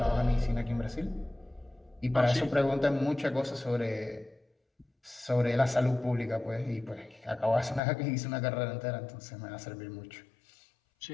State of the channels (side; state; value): right; drops out; at 7.8 s